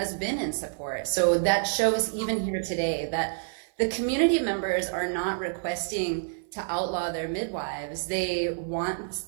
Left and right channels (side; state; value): left; silent; 56 dB below the other